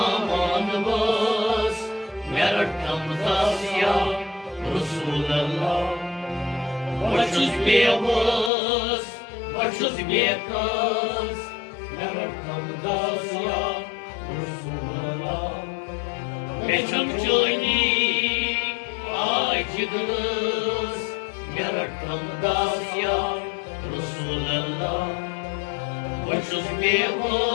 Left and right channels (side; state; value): right; drops out; at 8.5 s